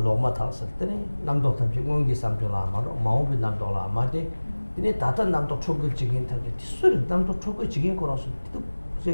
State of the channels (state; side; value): inverted; both; correlation -1.00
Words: 타서 때네 남도 탐지 공기 삼조라 마로 마오비 남도라 마데 이네 다다 남도 초급적인 타게 티술 남도 초급적인 거라서